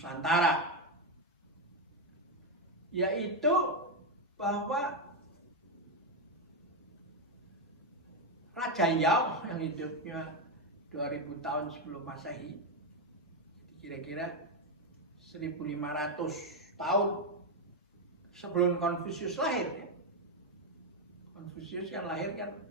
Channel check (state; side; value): normal; both; correlation 0.06